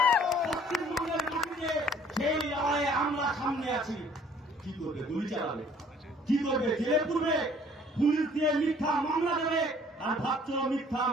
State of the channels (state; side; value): normal; both; correlation 0.56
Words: পশ্চিমবঙ্গের মাটিতে সেই লড়াইয়ে আমরা সামনে আছি। কি করবে? গুলি চালাবে? কি করবে? জেলে পুরবে? পুলিশ দিয়ে মিথ্যা মামলা দেবে? আর ভাবছ মিথ্যা